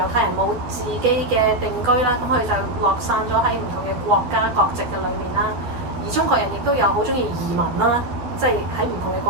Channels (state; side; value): late; left; 12 ms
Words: 太人冇自己嘅定居啦，咁佢就落散咗喺唔同嘅國家國籍嘅裏面啦。而中國人亦都有好中意移民啦，即係喺唔同嘅